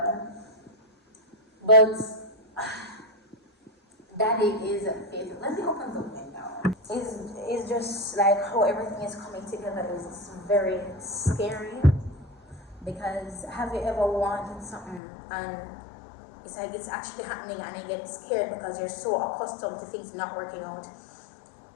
But Daddy is faithful. Let me open the window. It's just like how everything is coming together is very scary. Because have you ever wanted something and it's like it's actually happening and you get scared because you're so accustomed to things not working out?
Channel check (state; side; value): drops out; right; at 15.0 s